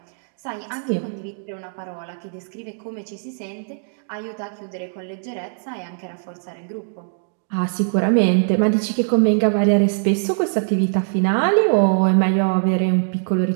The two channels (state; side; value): silent; left; digital silence